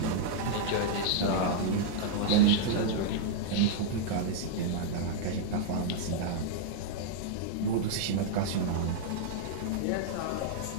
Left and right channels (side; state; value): both; different; correlation -0.01